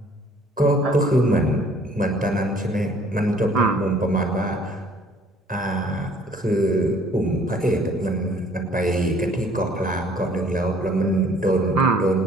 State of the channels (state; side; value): normal; both; correlation 0.57